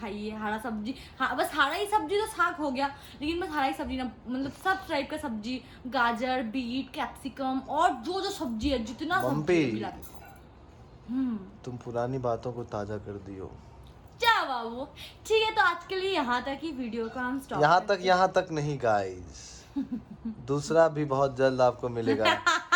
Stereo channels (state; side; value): identical; both; correlation 1.00